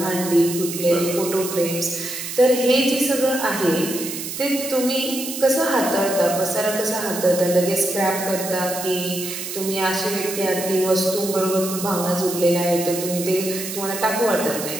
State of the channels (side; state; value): right; noise; hiss, 7 dB below the sound